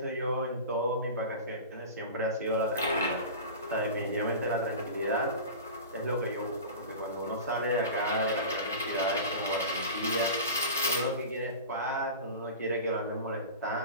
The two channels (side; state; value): both; inverted; correlation -0.31